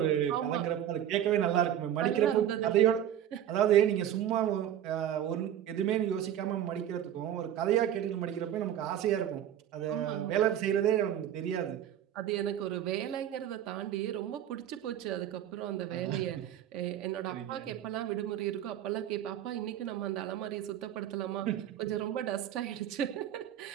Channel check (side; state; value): left; quieter; 10.8 dB